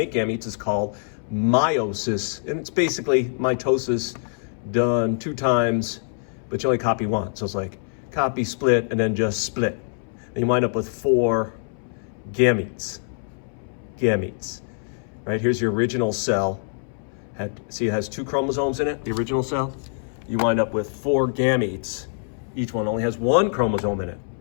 gametes is called meiosis, and it's basically mitosis done 2 times, but you only copy once. So it's like copy, split, and then just split. And you wind up with 4 gametes. Gametes. Right, here's your original cell. See, it has 2 chromosomes in it, the original cell. You wind up with 4 gametes. Each one only has 1 chromosome in it.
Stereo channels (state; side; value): silent; right; 62 dB below the other